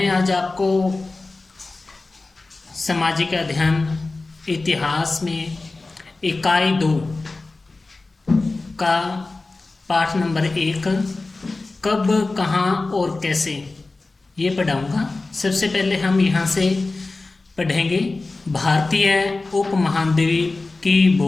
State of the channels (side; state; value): right; quieter; 3.4 dB